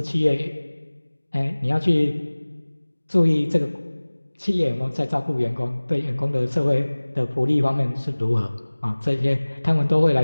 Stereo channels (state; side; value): inverted; both; correlation -1.00